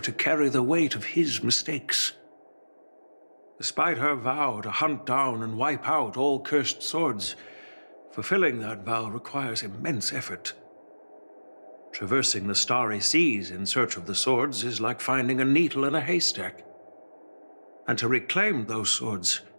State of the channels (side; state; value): both; inverted; correlation -1.00